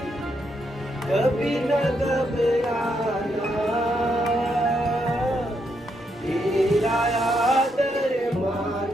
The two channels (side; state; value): both; normal; correlation 0.79